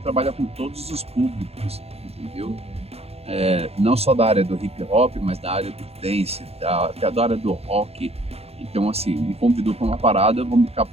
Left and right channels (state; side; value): late; left; 0.29 ms